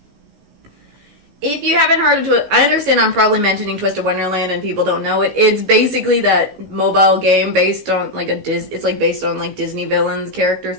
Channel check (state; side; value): late; left; 16 ms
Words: If you haven't heard of I understand I'm probably mentioning Twisted Wonderland and people don't know it. It's basically that mobile game based on, like, it's, like, based on, like, Disney villains, character